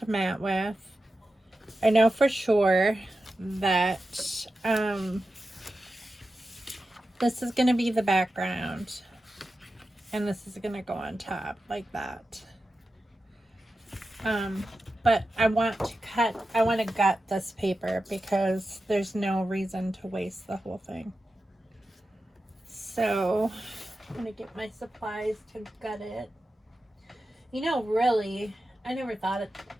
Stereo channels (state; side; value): normal; both; correlation 0.92